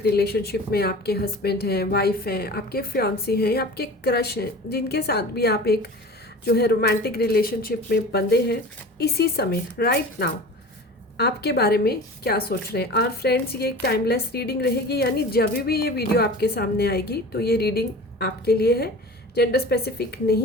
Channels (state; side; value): normal; both; correlation 0.37